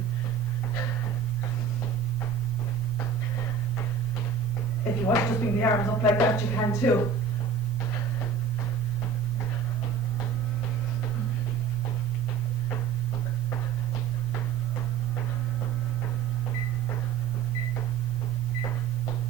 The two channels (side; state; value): left; quieter; 6.4 dB